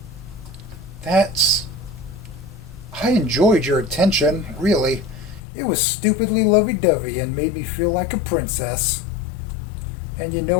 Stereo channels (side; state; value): right; drops out; at 5.4 s